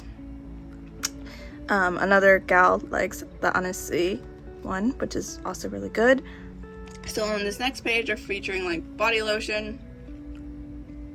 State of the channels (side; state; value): both; identical; correlation 1.00